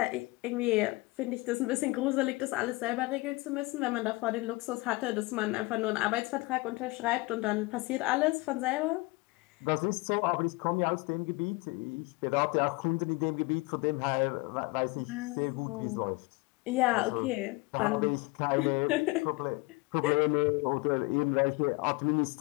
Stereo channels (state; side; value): quieter; right; 24.2 dB